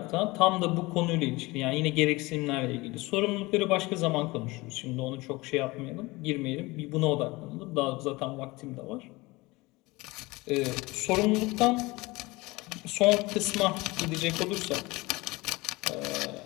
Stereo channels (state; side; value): quieter; right; 22.4 dB